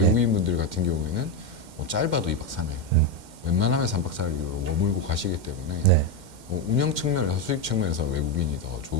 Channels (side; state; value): left; late; 2.1 ms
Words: 같은 경우에는 뭐 짧아도 2박 3일 웬만하면 3박 4일로 머물고 가시기 때문에 네. 뭐 운영 측면에서 수익 측면에서 외국인이 더